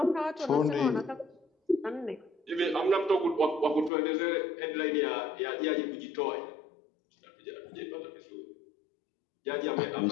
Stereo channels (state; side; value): drops out; right; at 3.9 s